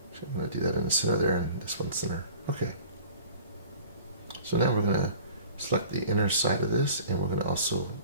So I'm going to do that in the center there and this one center. Okay. So now we're going to select the inner side of this and we're going to also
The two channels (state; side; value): inverted; both; correlation -0.46